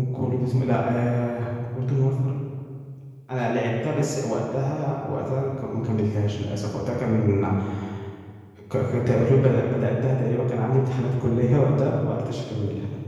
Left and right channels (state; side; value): identical; both; correlation 1.00